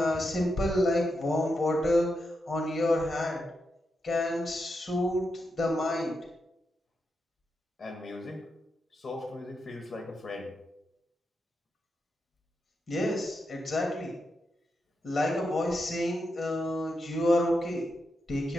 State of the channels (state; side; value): normal; both; correlation 0.86